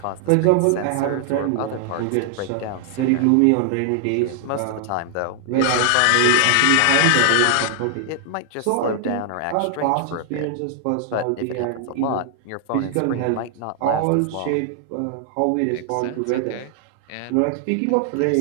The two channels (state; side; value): different; both; correlation 0.00